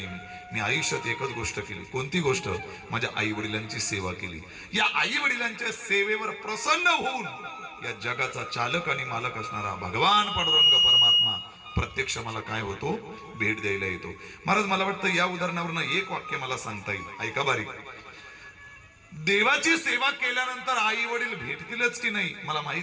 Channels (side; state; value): both; identical; correlation 1.00